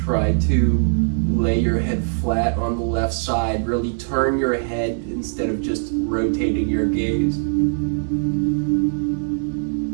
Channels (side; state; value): left; silent; digital silence